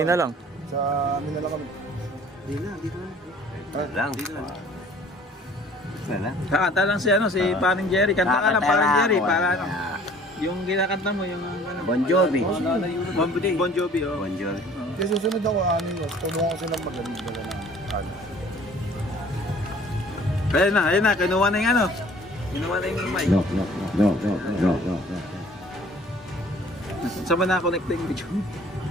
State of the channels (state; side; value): normal; both; correlation 0.52